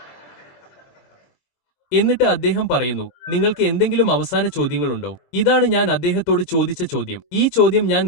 എന്നിട്ട് അദ്ദേഹം പറയുന്നു, നിങ്ങൾക്ക് എന്തെങ്കിലും അവസാന ചോദ്യങ്ങളുണ്ടോ? ഇതാണ് ഞാൻ അദ്ദേഹത്തോട് ചോദിച്ച ചോദ്യം. ഈ ചോദ്യം ഞാൻ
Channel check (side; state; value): right; late; 22 ms